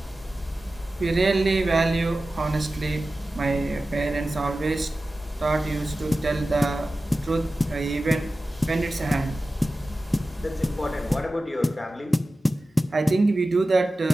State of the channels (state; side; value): normal; both; correlation 0.95